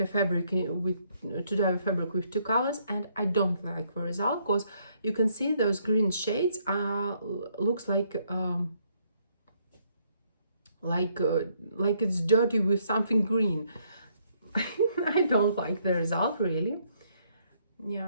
fabric to dye a fabric with 2 colors, and I don't like the result, because you can see those green shades looks like it's dirty with something green. I don't like the result, really.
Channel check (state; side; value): inverted; both; correlation -0.71